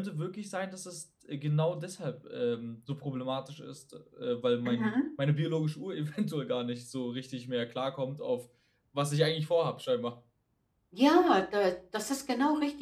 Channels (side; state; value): both; identical; correlation 1.00